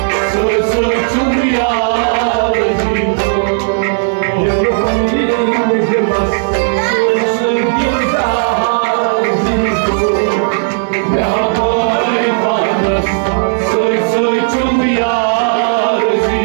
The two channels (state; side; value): silent; left; digital silence